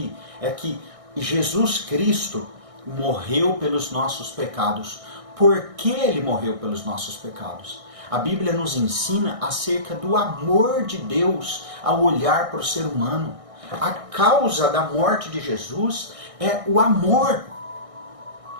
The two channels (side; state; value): left; late; 1.6 ms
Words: é que Jesus Cristo morreu pelos nossos pecados. Por que ele morreu pelos nossos pecados? A Bíblia nos ensina acerca do amor de Deus ao olhar para o ser humano. A causa da morte de Jesus é o amor.